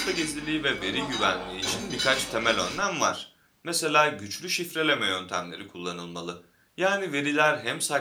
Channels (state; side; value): identical; both; correlation 1.00